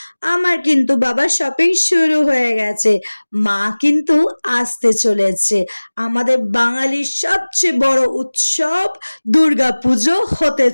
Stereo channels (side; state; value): both; inverted; correlation -1.00